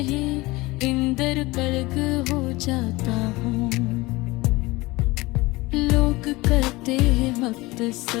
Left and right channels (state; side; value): quieter; right; 21.4 dB